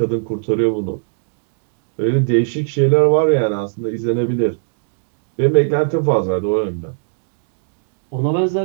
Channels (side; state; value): left; silent; digital silence